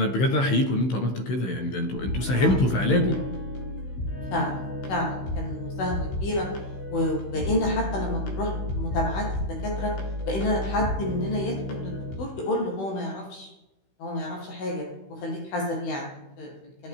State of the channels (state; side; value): late; right; 16 ms